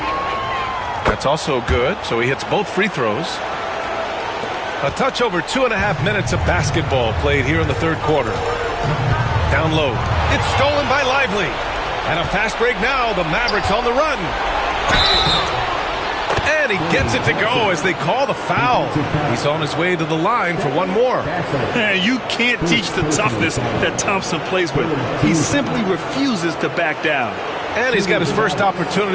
That's also good, so he hits both free throws. A touch over 2.5 minutes of basketball played here in the third quarter. Down low. It's stolen by Lively. And a fast break now. The Mavericks on the run. And he gets it to go as they call the foul. He's on his way to the line for one more. Man, you can't teach the toughness that Thompson plays with. He simply refuses to back down. And he's got his first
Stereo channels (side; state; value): both; identical; correlation 1.00